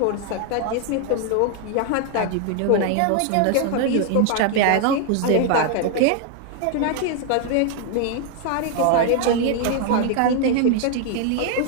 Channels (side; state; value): both; different; correlation 0.00